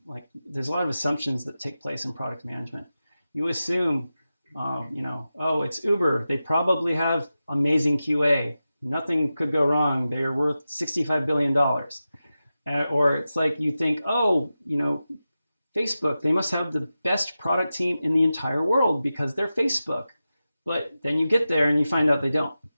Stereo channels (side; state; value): both; inverted; correlation -0.93